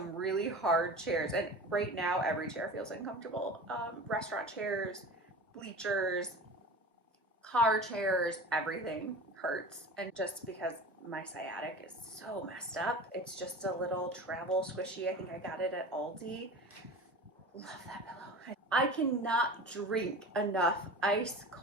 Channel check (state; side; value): normal; both; correlation 0.34